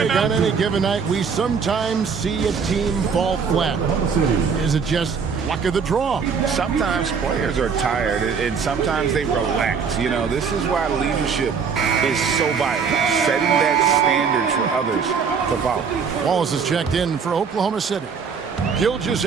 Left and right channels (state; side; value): quieter; left; 6.0 dB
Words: on any given night, we sometimes see a team fall flat. Is it just luck of the draw? Sometimes players are tired, and sometimes they relax. You know, this is why leadership is so vital, setting that standard for others to follow. Wallace is checked in for Oklahoma City.